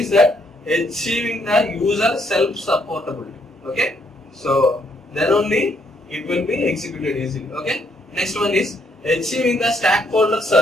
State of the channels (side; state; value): both; normal; correlation 0.72